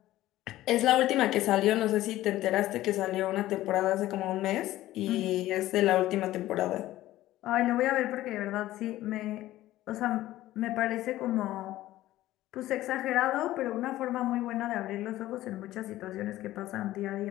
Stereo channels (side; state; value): right; quieter; 15.3 dB